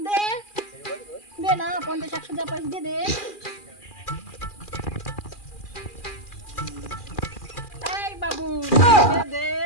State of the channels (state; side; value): late; right; 2.4 ms